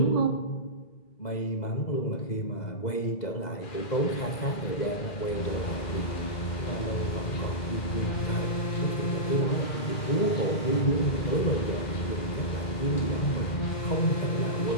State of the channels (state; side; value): late; right; 2.0 ms